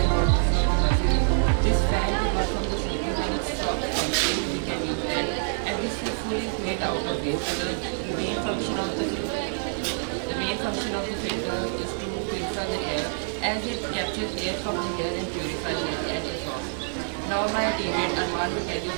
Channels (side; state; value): left; silent; 61 dB below the other